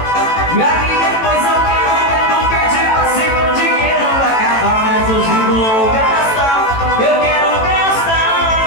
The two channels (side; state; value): right; late; 18 ms